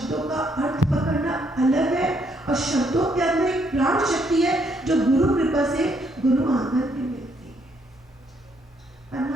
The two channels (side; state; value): both; normal; correlation 0.71